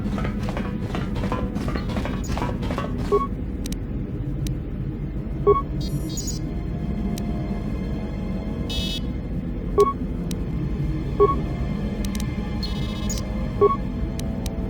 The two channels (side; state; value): both; identical; correlation 1.00